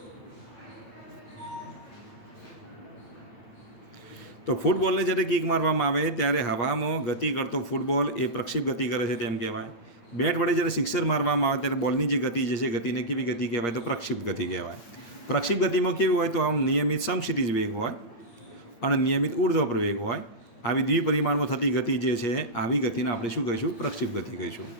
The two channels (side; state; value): right; late; 8.5 ms